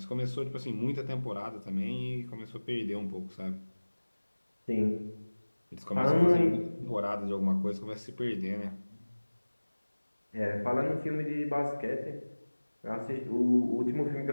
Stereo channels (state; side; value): inverted; both; correlation -1.00